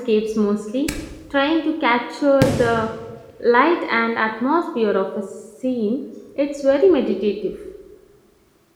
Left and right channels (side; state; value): both; identical; correlation 1.00